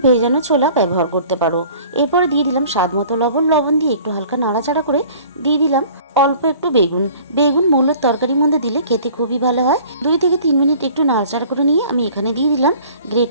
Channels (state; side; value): inverted; both; correlation -0.49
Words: ভেজানো ছোলা ব্যবহার করতে পারো। এরপরে দিয়ে দিলাম স্বাদ মতো লবণ দিয়ে একটু হালকা নাড়াচাড়া করে দিয়ে দিলাম অল্প একটু বেগুন মূলোর তরকারির মধ্যে দিলে খেতে খুবই ভালো হয়। 2 থেকে 3 মিনিট একটু নাড়াচাড়া করে নিয়ে আমি এখানে দিয়ে দিলাম গ্রেট